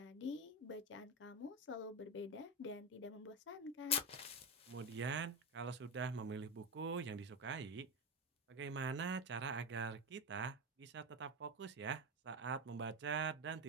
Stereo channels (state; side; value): normal; both; correlation 0.14